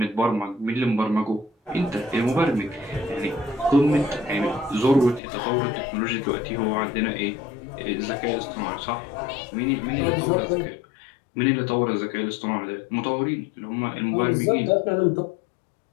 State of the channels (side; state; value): right; drops out; at 5.2 s